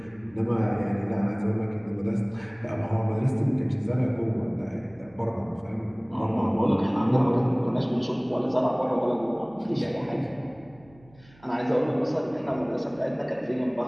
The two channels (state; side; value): noise; right; hum, 27 dB below the sound